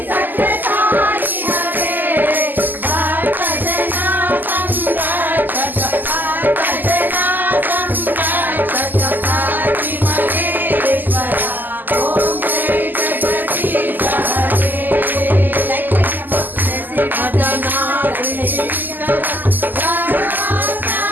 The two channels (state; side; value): late; left; 0.087 ms